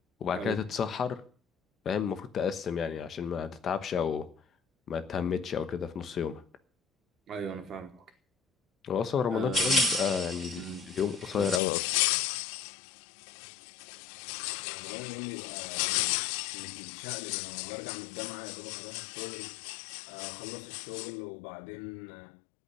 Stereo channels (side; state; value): right; drops out; at 11.6 s